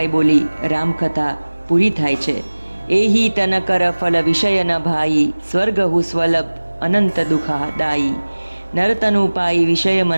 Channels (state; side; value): inverted; both; correlation -1.00